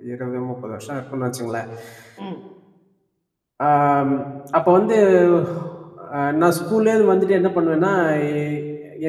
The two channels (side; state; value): both; identical; correlation 1.00